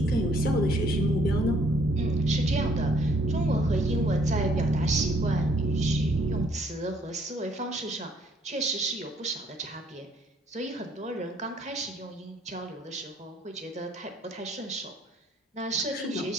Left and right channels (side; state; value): both; normal; correlation 0.65